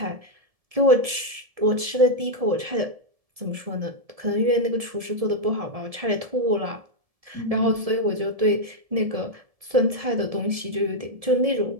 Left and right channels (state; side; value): late; left; 1.7 ms